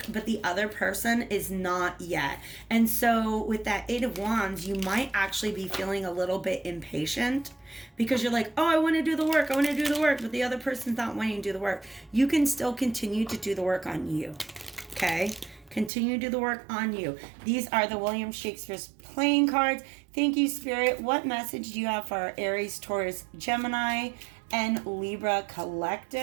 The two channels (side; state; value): left; drops out; at 15.9 s